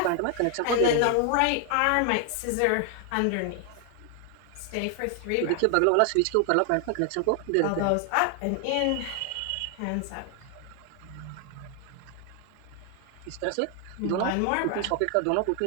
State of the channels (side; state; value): both; different; correlation 0.00